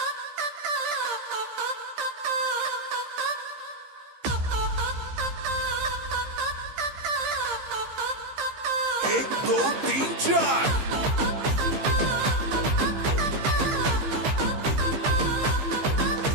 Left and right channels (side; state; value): left; late; 15 ms